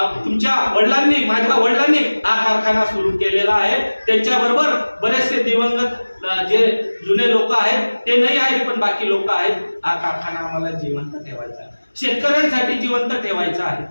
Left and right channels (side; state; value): both; inverted; correlation -1.00